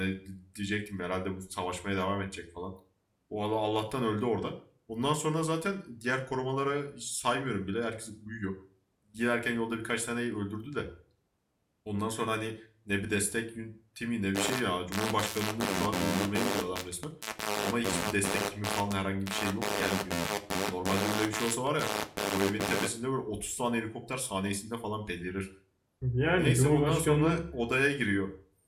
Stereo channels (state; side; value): identical; both; correlation 1.00